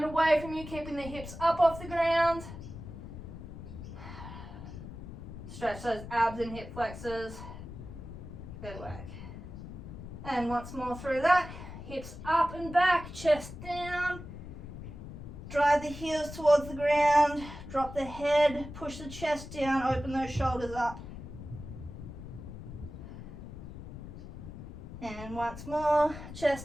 away from you, keeping the hips up off the ground. Stretch those abs and hip flexors. Good work. And once more through that, hips up and back, chest down. Drive the heels towards the ground, drop the head, push the chest down, open those shoulders up. And once more,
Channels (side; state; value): left; noise; rumble, 11 dB below the sound